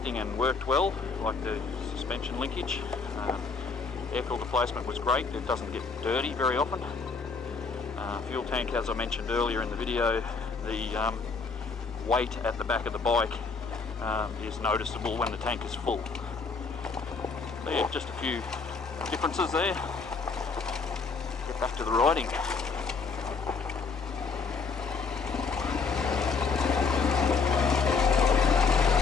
and worked well, like the suspension linkage. Air filter placement was great. It doesn't get dirty very often. Fuel tank, as I mentioned earlier in the video, the weight at the back of the bike is noticeable when the tank is full. So yeah, just a few differences there. Get back to the riding.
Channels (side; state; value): right; quieter; 4.8 dB